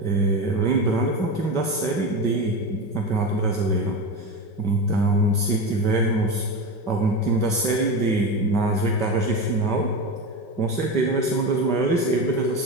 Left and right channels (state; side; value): late; right; 5.3 ms